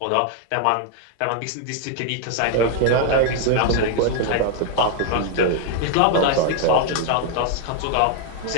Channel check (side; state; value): both; different; correlation 0.00